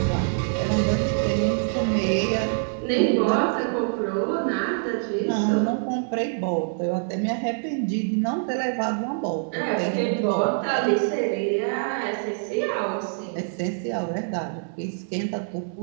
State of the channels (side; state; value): left; silent; digital silence